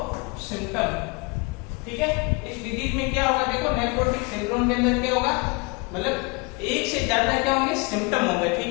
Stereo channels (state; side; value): quieter; right; 28.9 dB